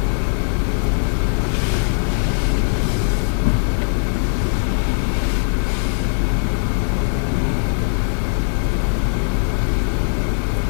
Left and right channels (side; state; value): right; silent; digital silence